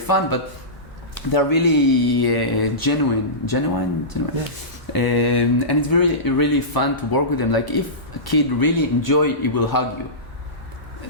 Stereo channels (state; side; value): normal; both; correlation -0.20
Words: but they're really genuine. Yes. And it's really fun to work with them. Like if a kid really enjoy, he will hug you.